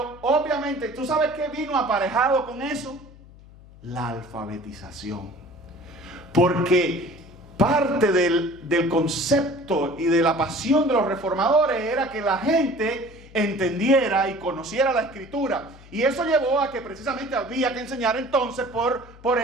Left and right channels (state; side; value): noise; left; hum, 21 dB below the sound